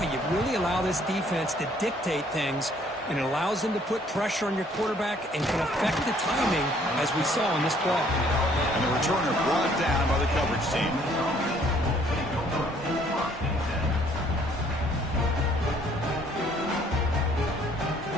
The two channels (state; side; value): normal; both; correlation 0.62